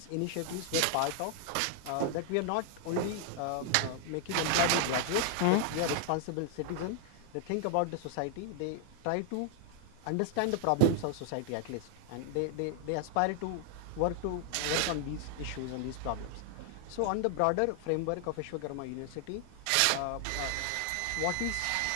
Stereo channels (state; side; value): different; both; correlation 0.00